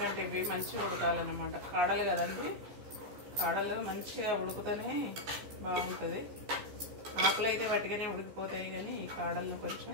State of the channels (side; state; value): left; late; 14 ms